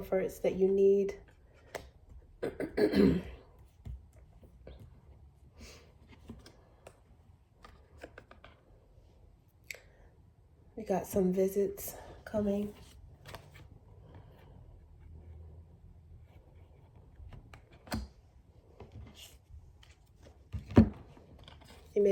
that you need. We got some visits coming. You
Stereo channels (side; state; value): both; identical; correlation 1.00